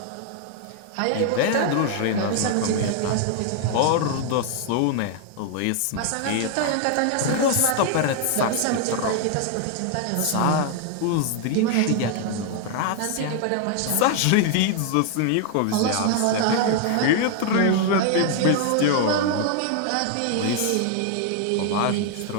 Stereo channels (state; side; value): different; both; correlation 0.00